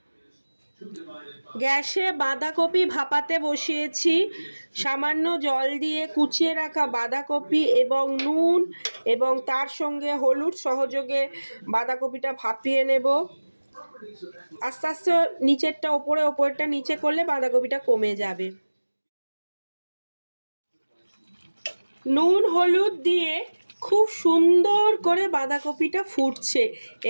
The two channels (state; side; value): inverted; both; correlation -1.00